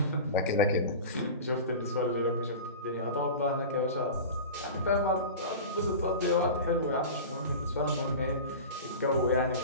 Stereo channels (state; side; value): inverted; both; correlation -0.32